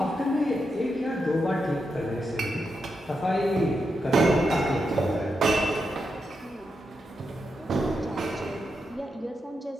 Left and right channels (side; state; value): both; normal; correlation 0.85